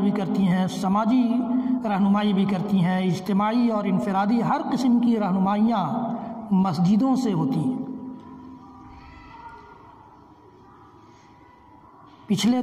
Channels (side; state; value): both; identical; correlation 1.00